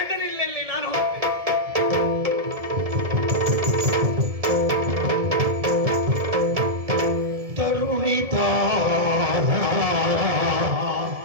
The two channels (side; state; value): left; late; 2.0 ms